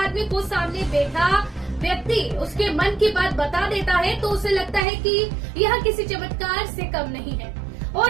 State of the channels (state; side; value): drops out; left; at 4.9 s